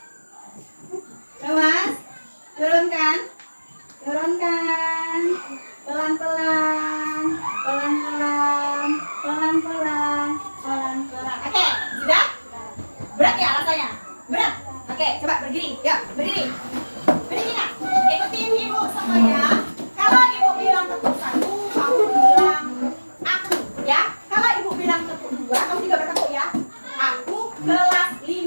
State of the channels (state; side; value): inverted; both; correlation -1.00